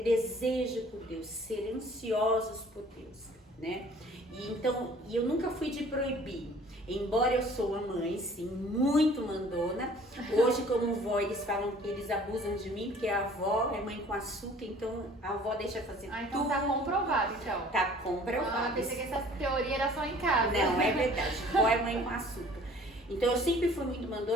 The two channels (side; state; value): both; normal; correlation 0.52